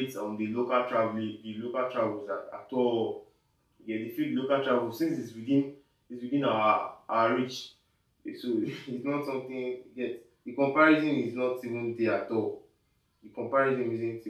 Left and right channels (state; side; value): identical; both; correlation 1.00